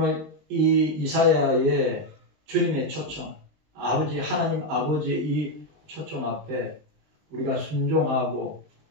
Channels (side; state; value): left; late; 20 ms